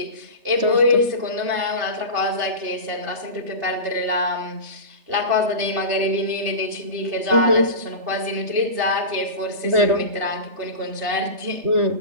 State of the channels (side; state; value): left; late; 3.4 ms